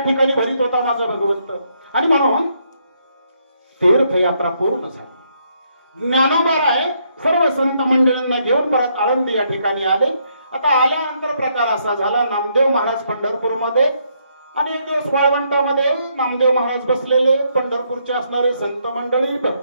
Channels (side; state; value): both; inverted; correlation -0.73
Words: ठिकाणी भरीत होता माझा भगवंत. आणि म्हणून तीर्थयात्रा पूर्ण झाली. ज्ञानोबाराय सर्व संत मंडळींना घेऊन परत आळंदी या ठिकाणी आले. आता आल्यानंतर प्रकार असा झाला, नामदेव महाराज पंढरपूरमध्ये आणि एक दिवस वाळवंटामध्ये नामदेव महाराज बसलेले, पंढरपूरचे असणारे संत मंडळी,